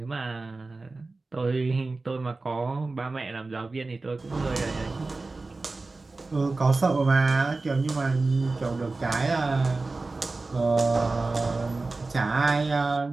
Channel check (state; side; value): quieter; left; 3.5 dB